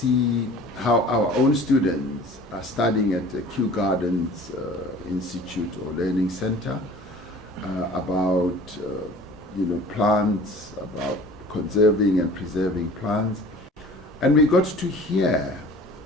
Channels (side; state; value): both; normal; correlation 0.45